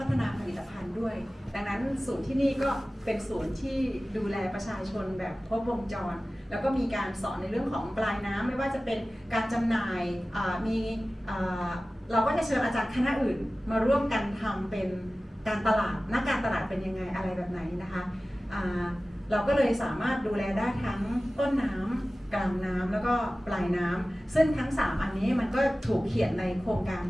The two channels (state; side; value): normal; both; correlation 0.96